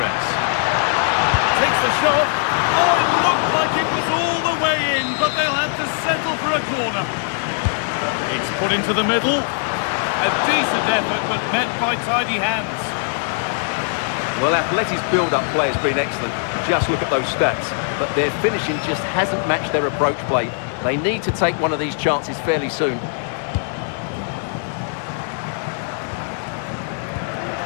takes the shot. Oh, it looked like it was all the way in, but they'll have to settle for a corner. It's put into the middle. A decent effort, but met by tidy hands. Well, Atleti's build-up play has been excellent. Just look at those stats. But their finishing just hasn't matched their approach play. They need to take one of these chances fairly soon.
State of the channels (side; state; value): right; silent; 65 dB below the other